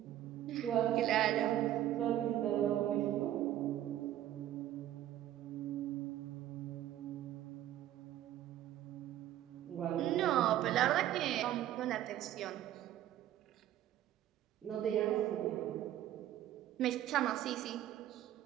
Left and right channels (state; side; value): quieter; left; 12.6 dB